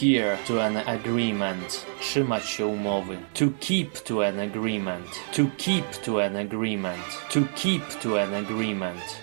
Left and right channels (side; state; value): left; silent; digital silence